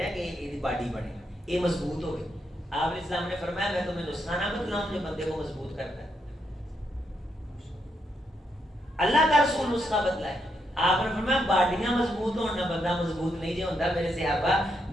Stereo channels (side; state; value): both; normal; correlation 0.80